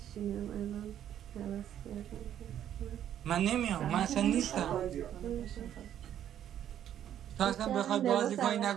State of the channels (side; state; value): left; quieter; 10.5 dB